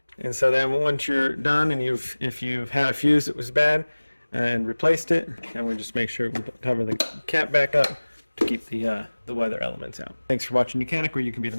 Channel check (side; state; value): both; inverted; correlation -1.00